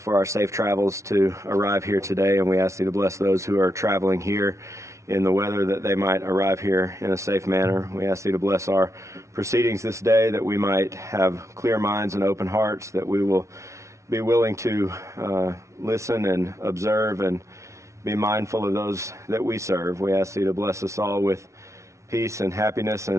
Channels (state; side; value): late; left; 0.14 ms